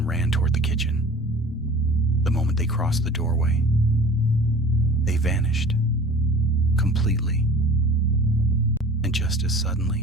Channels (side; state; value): both; normal; correlation 0.43